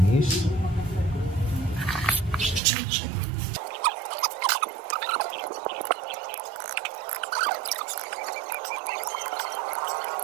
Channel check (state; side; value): drops out; left; at 2.6 s